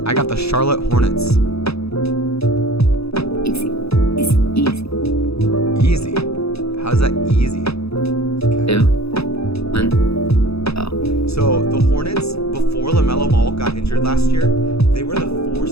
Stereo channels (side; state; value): right; late; 0.78 ms